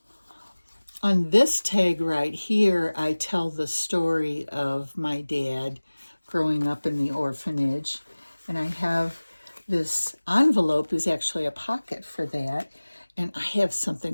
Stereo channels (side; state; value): both; inverted; correlation -1.00